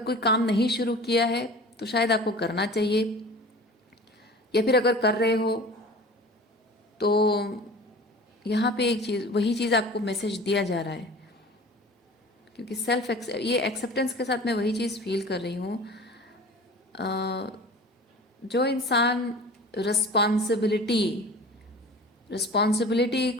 काम नहीं शुरू किया है तो शायद आपको करना चाहिए, या फिर अगर कर रहे हो तो यहाँ पे एक चीज़, वही चीज़ आपको मैसेज दिया जा रहा है, क्योंकि ये एक्सेप्टेंस के साथ मैं वही चीज़ फील कर रही हूँ। जो इंसान रिस्पॉन्सिबिलिटी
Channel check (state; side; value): normal; both; correlation 0.40